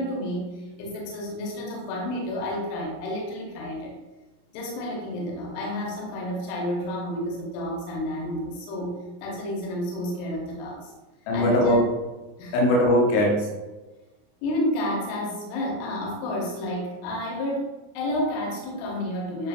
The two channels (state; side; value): late; right; 28 ms